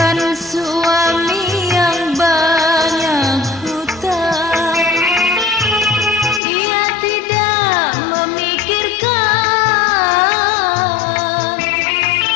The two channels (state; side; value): drops out; right; at 6.4 s